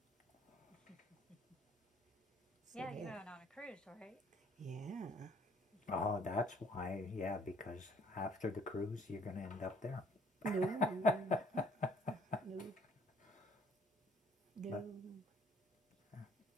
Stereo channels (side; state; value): both; normal; correlation 0.60